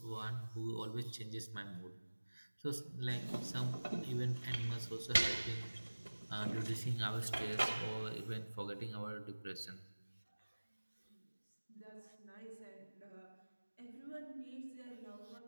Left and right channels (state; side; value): inverted; both; correlation -1.00